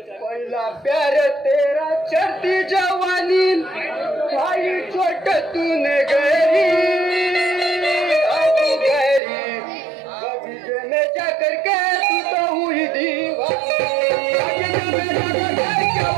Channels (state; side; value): drops out; left; at 9.2 s